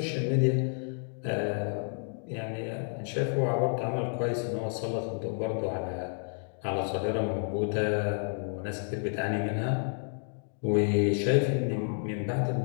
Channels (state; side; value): silent; right; 58 dB below the other